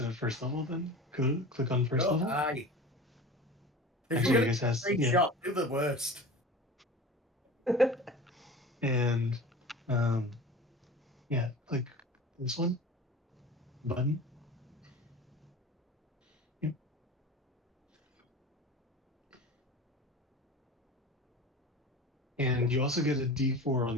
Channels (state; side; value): normal; both; correlation 0.35